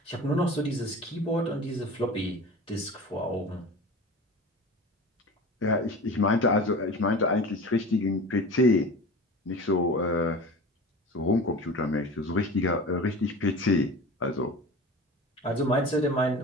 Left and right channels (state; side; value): normal; both; correlation 0.35